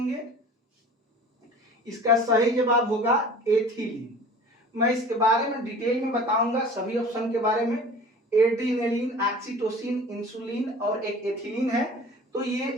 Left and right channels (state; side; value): normal; both; correlation 0.42